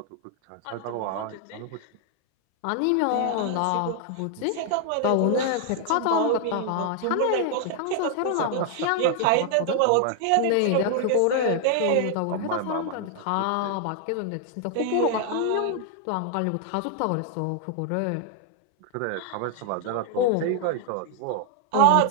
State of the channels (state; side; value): different; both; correlation 0.00